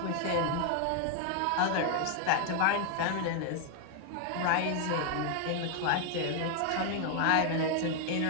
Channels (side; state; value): both; different; correlation 0.00